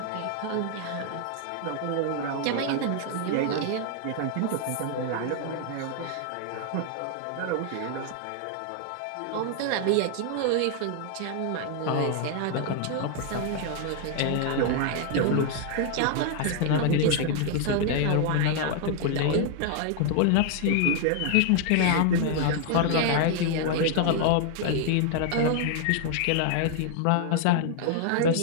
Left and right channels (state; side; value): different; both; correlation 0.00